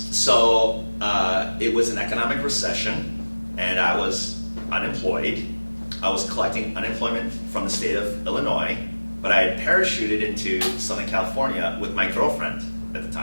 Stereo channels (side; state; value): both; inverted; correlation -1.00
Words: it was an economic recession, and I was unemployed. I was collecting unemployment from the state of Illinois, but I had parachuted into Southern California with my girlfriend at the